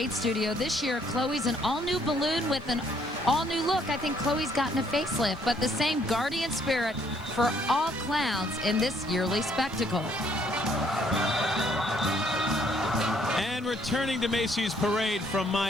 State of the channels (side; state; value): both; normal; correlation 0.66